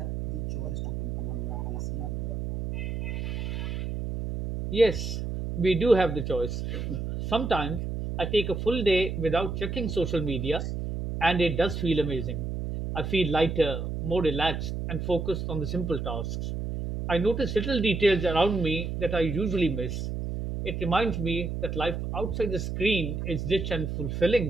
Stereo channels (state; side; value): noise; right; hum, 4 dB below the sound